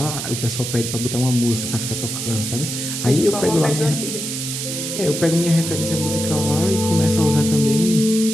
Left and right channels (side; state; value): right; noise; hiss, 5 dB below the sound